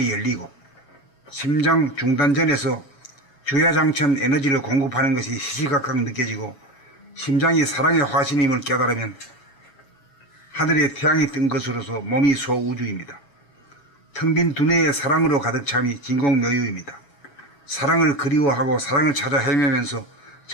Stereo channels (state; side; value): late; right; 7.2 ms